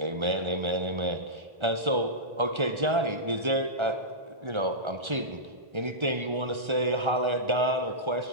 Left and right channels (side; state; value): left; late; 1.3 ms